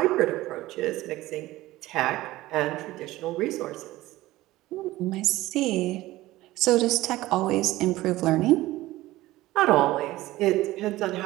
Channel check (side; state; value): left; quieter; 17.3 dB